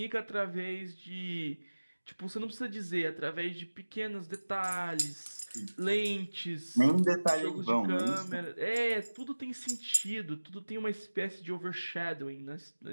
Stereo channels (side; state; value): both; inverted; correlation -1.00